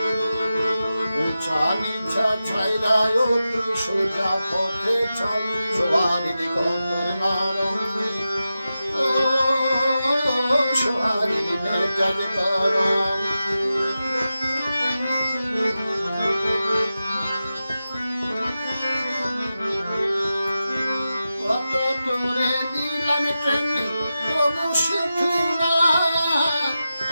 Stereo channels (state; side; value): inverted; both; correlation -0.92